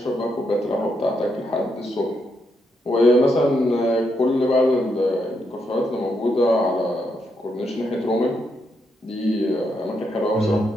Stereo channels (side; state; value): both; normal; correlation 0.80